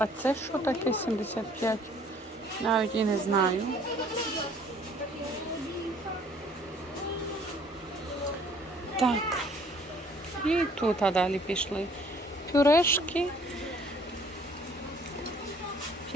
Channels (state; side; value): normal; both; correlation 0.58